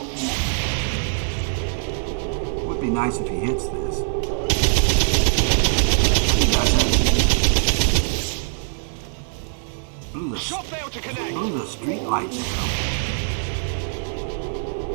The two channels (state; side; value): silent; left; digital silence